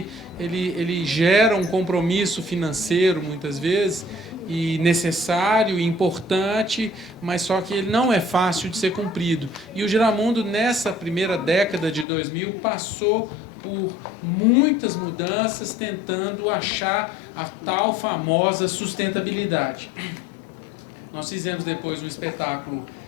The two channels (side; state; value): right; drops out; at 12.1 s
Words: gera um compromisso financeiro, muitas vezes, e necessário e importante, mas só que ele não é fácil de ser cumprido. E o Giramundo, nessa primeira década de 2000, passou por muitas mudanças, tentando achar a tal famosa sustentabilidade. Nós fizemos depois um espetáculo